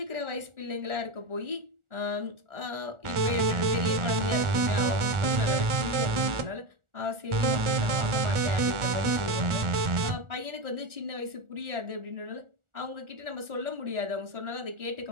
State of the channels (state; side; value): late; left; 1.4 ms